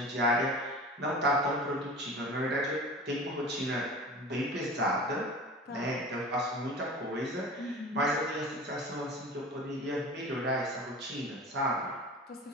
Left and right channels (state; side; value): normal; both; correlation 0.36